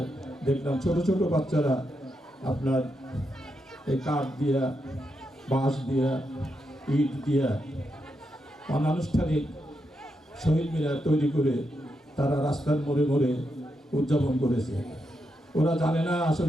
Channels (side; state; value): both; normal; correlation 0.84